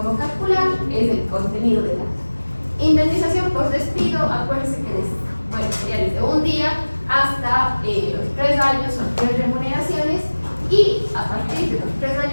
calcular, es el contenido del acta. Indemnización por despido, acuérdense que sería desde un día hasta los 3 años, son 3 remuneraciones, y a partir de los 3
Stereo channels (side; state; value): both; inverted; correlation -1.00